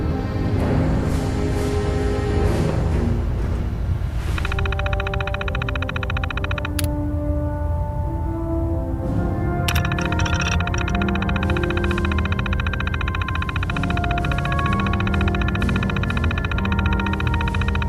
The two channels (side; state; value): both; identical; correlation 1.00